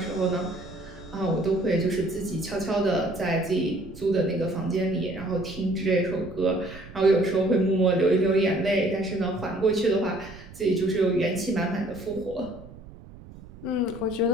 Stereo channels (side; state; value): right; noise; rumble, 18 dB below the sound